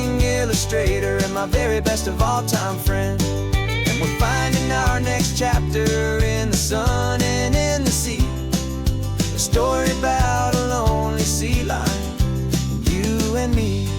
illustrator and my very best of all time friend. We're finding our next chapter in the sun and in the sea, a story about a lonely sea lion, you and me.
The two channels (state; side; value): identical; both; correlation 1.00